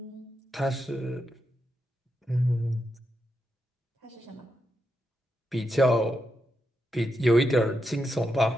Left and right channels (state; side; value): normal; both; correlation 0.85